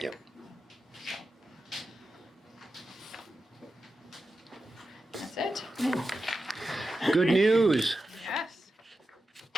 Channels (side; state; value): both; normal; correlation 0.91